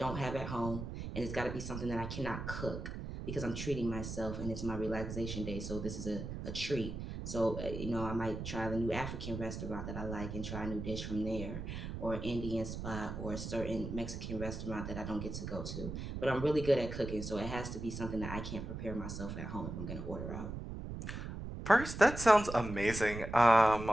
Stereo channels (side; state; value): right; noise; rumble, 6 dB below the sound